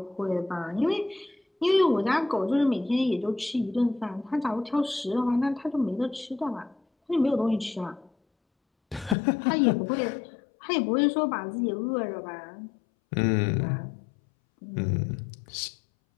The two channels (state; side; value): drops out; right; at 9.2 s